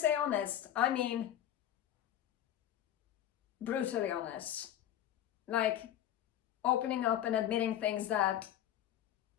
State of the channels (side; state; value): right; quieter; 11.4 dB